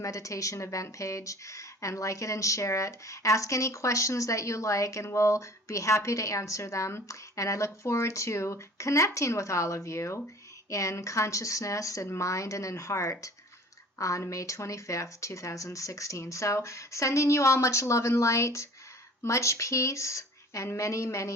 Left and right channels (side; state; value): both; normal; correlation 0.46